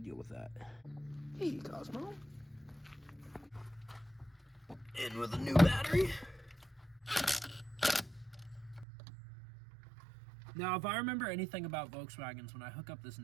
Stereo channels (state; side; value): drops out; left; at 8.8 s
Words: deal with that. Hey, Cosmo. In with a new battery. Now, if I remember anything about Volkswagens, when I hook up this